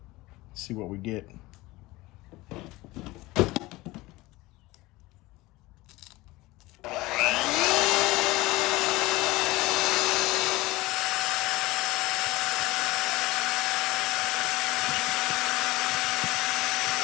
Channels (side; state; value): right; quieter; 20.2 dB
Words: See what we get.